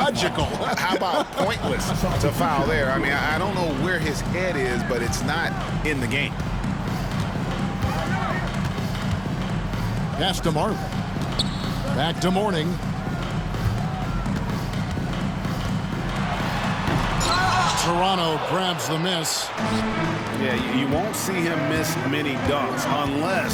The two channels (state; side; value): identical; both; correlation 1.00